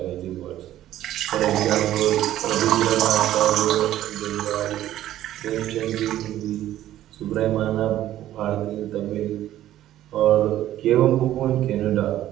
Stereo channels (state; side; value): quieter; left; 13.1 dB